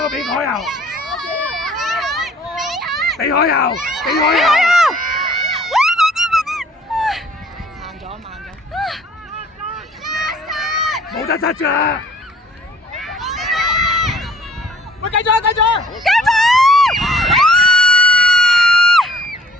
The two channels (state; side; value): normal; both; correlation 0.55